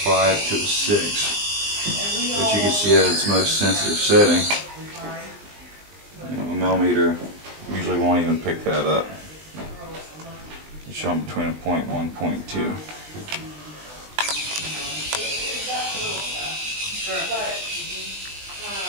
5 to a 6. But you can see at its most sensitive setting, a millimeter usually won't even pick that up. It's showing between a 0.1 and 0.2.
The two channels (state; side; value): late; left; 20 ms